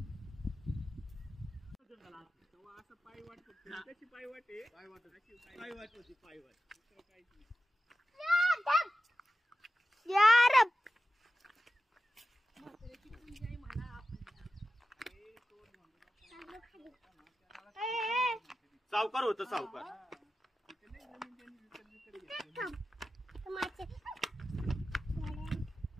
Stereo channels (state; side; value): normal; both; correlation 0.94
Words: सावकार होतं सावकार.